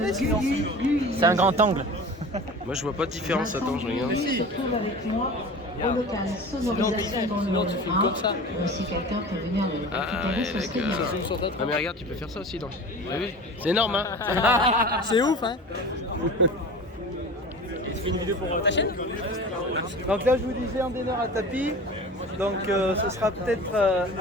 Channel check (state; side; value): normal; both; correlation 0.36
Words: sinon. C'est un grand angle. Moi, je vois pas de différence. Attends, je regarde. Se trouve avec moi au local sonorisation dans le sinon, tu filmes comme ça. Si quelqu'un peut venir le Ah, récupérer, ouais, ce serait bien. d'accord. Ah, mais regarde, tu peux faire ça aussi, non? T'as vu? C'est énorme, hein? C'est ouf, hein. Et tu fais une vidéo pour ta chaîne? Donc là, je vous disais un dîner à tapis. Donc ce sera peut-être